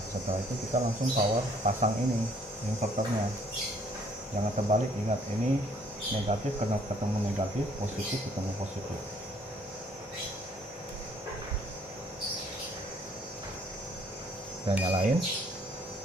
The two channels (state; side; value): normal; both; correlation 0.62